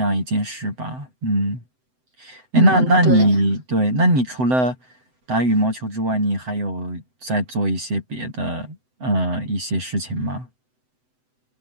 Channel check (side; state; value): left; late; 7.9 ms